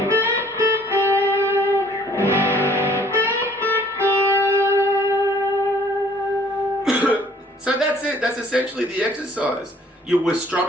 So that's it. That's essentially the exercise. We're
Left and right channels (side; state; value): both; normal; correlation 0.57